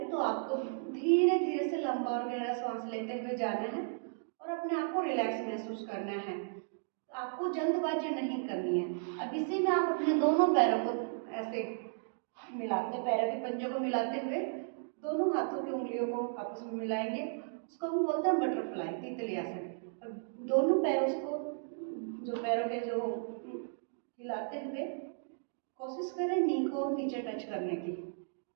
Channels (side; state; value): left; silent; digital silence